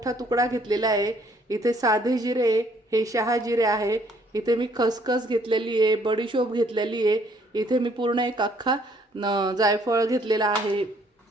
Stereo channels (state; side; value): normal; both; correlation 0.64